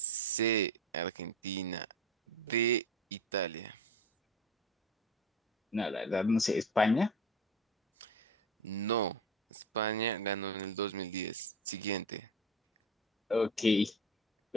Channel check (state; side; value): normal; both; correlation 0.31